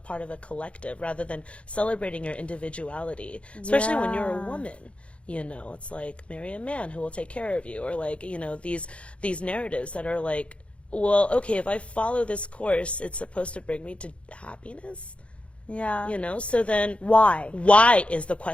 of a collective rather than celebrating your individuality, especially when you're a woman. You know, it's like marry a man who will take care of you, or like, you know, these narratives that are like, well, okay, if I follow this course, it's supposed to bring me to happiness. You know, so then why? Why is the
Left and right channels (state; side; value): late; right; 0.061 ms